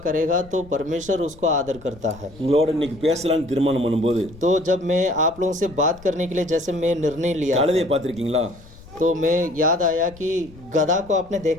करेगा तो परमेश्वर उसको आदर करता है. உங்களோட இன்னைக்கு பேசலாம்னு தீர்மானம் பண்ணும்போது तो जब मैं आप लोगों से बात करने के लिए जैसे मैं निर्णय लिया, கழுதையை பார்த்திருக்கீங்களா? तो मैं याद आया कि गधा को आपने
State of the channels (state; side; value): noise; left; rumble, 21 dB below the sound